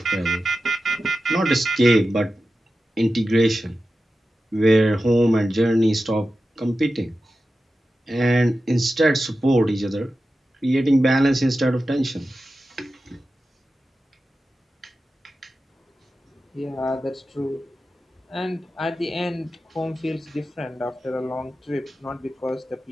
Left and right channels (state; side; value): normal; both; correlation 0.93